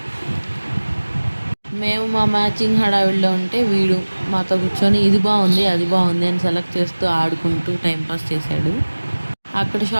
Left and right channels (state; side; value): inverted; both; correlation -1.00